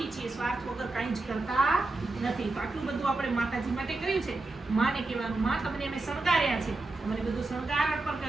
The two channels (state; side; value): quieter; left; 3.2 dB